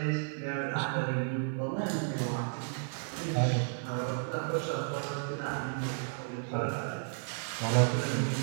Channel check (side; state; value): left; silent; 56 dB below the other